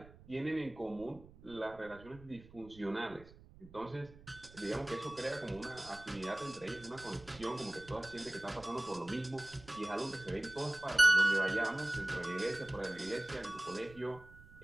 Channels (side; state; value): right; noise; rumble, 21 dB below the sound